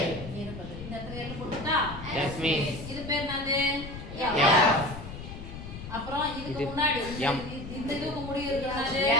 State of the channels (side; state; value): left; noise; rumble, 11 dB below the sound